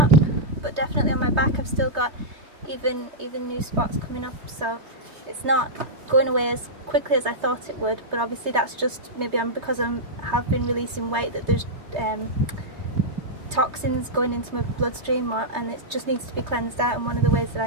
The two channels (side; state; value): left; late; 3.2 ms